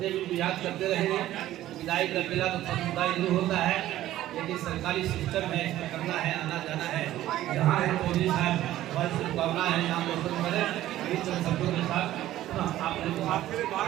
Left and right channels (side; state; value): left; quieter; 14.1 dB